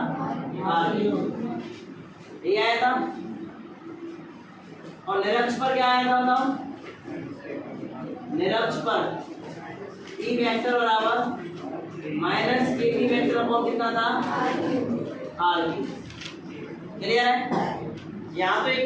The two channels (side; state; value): both; identical; correlation 1.00